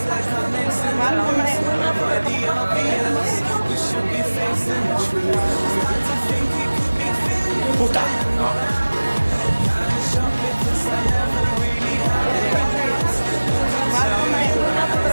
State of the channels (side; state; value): both; inverted; correlation -1.00